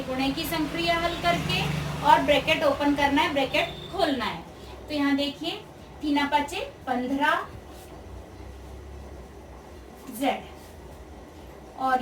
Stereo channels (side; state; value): both; identical; correlation 1.00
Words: गुणे की संक्रिया हल करके और ब्रैकेट ओपन करना है, ब्रैकेट खोलना है। तो यहाँ देखिए 3 5 15 z